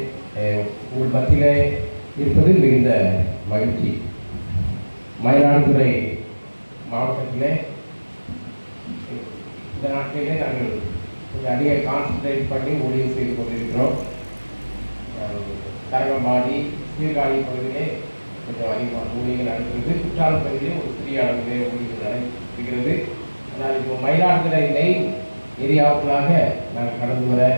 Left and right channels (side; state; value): both; inverted; correlation -1.00